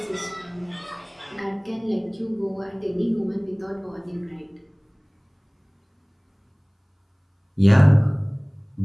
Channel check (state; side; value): identical; both; correlation 1.00